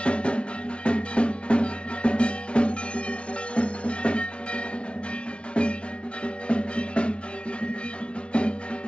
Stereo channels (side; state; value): right; late; 0.059 ms